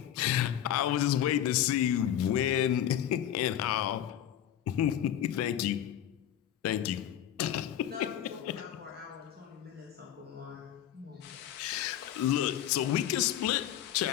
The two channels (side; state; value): right; quieter; 10.9 dB